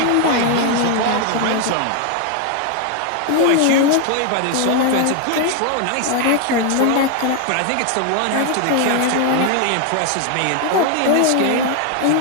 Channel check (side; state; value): both; different; correlation 0.00